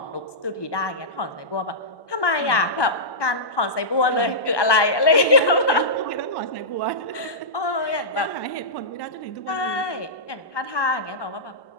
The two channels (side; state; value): right; late; 1.1 ms